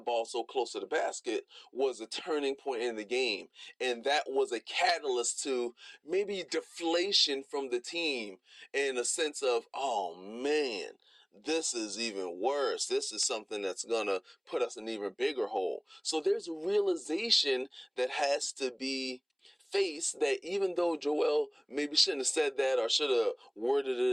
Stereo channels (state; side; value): identical; both; correlation 1.00